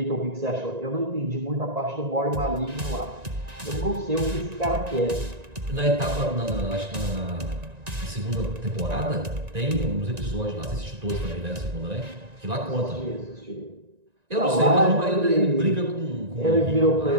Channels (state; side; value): late; left; 1.9 ms